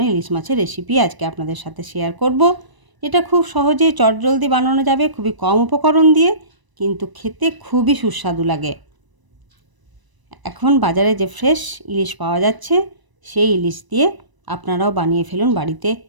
ইলিশ মাছের রেসিপি আজকে আপনাদের সাথে শেয়ার করব। এটা খুব সহজেই চটজলদি বানানো যাবে, খুবই কম উপকরণ দিয়ে, কিন্তু খেতে খুবই সুস্বাদু লাগে। এখন বাজারে যে ফ্রেশ ইলিশ পাওয়া যাচ্ছে, সেই ইলিশ দিয়ে আপনারাও বানিয়ে ফেলুন বাড়িতে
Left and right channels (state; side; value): late; left; 1.0 ms